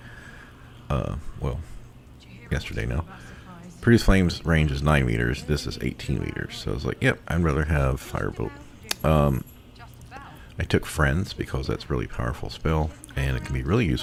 Well, yesterday now. Produce Flame's range is 9 meters. This is 18 meters. So I was like, yep, I'd rather have Firebolt. I took Friends because that's a really powerful spell, and it can be really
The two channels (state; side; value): identical; both; correlation 1.00